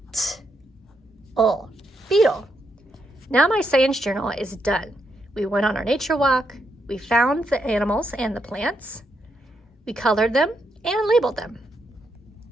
T, L. Beetle. Now my science journal is done. We went on our nature walk, we found the animals and the plants, we colored them and labeled them.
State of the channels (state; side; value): normal; both; correlation 0.80